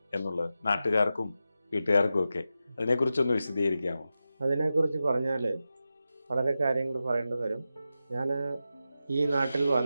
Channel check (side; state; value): both; inverted; correlation -0.91